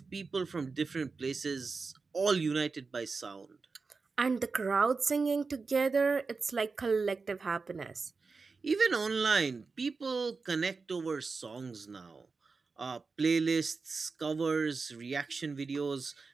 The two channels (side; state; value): left; quieter; 4.4 dB